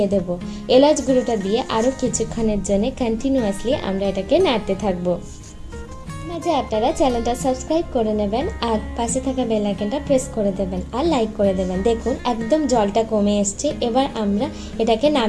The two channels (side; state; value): both; identical; correlation 1.00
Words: দেব। এলাচ গুঁড়োটা দিয়ে আরও কিছুক্ষণের জন্য কন্টিনিউয়াসলি আমরা এটাকে নাড়তে থাকবো। মাঝে আপনারা চ্যানেলটা সাবস্ক্রাইব করে নেবেন আর পাশে থাকা বেল আইকনটা প্রেস করে দেবেন আর লাইক করে দেবেন। দেখুন একদম জলটা কমে এসছে। এবার আমরা এটাকে